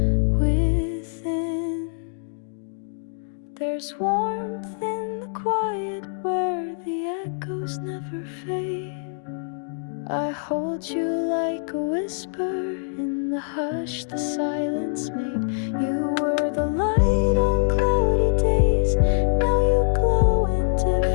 within. There's warmth in the quiet where the echoes never fade. I hold you like a whisper in the hush the silence made. You were the light on cloudy days, now you glow in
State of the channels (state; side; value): silent; right; digital silence